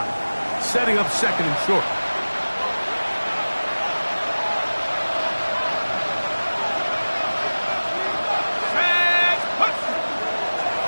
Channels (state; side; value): inverted; both; correlation -1.00